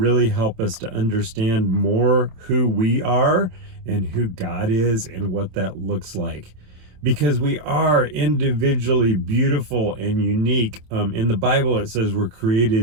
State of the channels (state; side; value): late; left; 27 ms